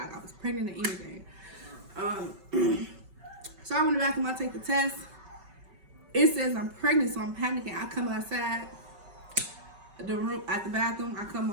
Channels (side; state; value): left; late; 5.3 ms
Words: I was pregnant or anything. So I went in the bathroom, I take the test. It says I'm pregnant, so I'm panicking. I come outside the room, at the bathroom. I come